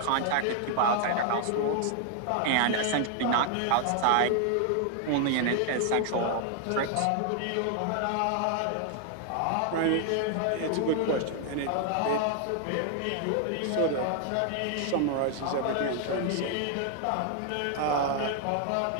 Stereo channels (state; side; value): different; both; correlation 0.00